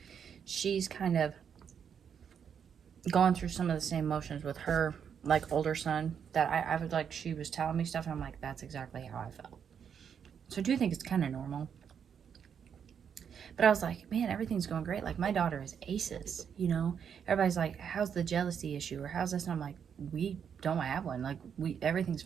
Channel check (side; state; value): left; quieter; 7.6 dB